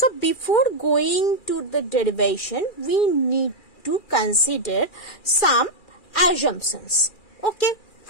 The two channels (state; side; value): late; right; 2.4 ms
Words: before going to the derivation, we need to consider some assumptions. Okay,